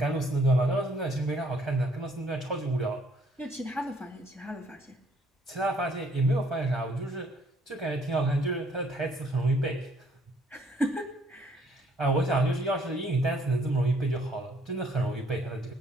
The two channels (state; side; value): normal; both; correlation 0.64